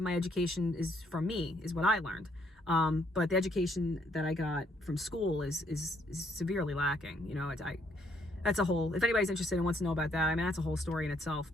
my education is from me, is what I learned. But the education that I got from school is severely lacking. You know, that's a whole, if anybody's interested and wants to know about that, I mean, that's a whole story in itself.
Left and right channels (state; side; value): normal; both; correlation 0.70